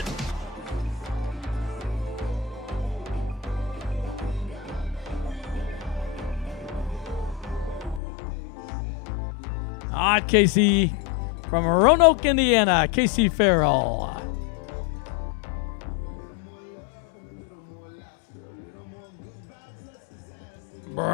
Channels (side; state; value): right; drops out; at 8.0 s